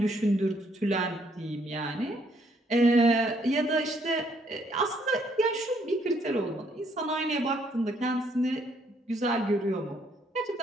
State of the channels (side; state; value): both; normal; correlation 0.69